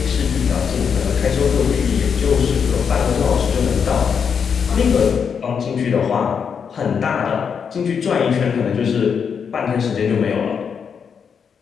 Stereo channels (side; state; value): right; quieter; 6.7 dB